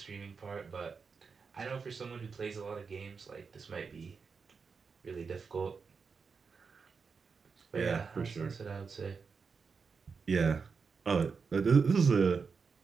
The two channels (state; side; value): quieter; left; 5.3 dB